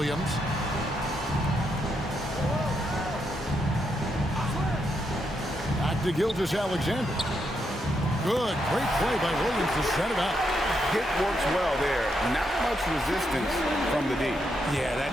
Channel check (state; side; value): normal; both; correlation 0.80